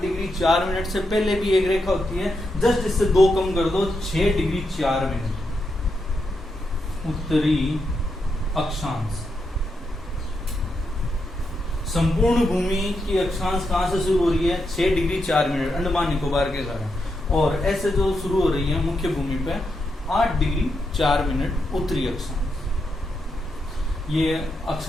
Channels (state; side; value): normal; both; correlation 0.84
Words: डिग्री 4 मिनट से पहले भी एक रेखा होती है, जस्ट इससे 2 कम कर दो, 6 डिग्री 4 मिनट उत्तरी अक्षांश। संपूर्ण भूमि की अक्षांश कहां से शुरू हो रही है, 6 डिग्री 4 मिनट अंडमान निकोबार के कारण, और ऐसे जो शुरू हो रही है मुख्य भूमि पे 8 डिग्री 4 मिनट उत्तरी अक्षांश। ये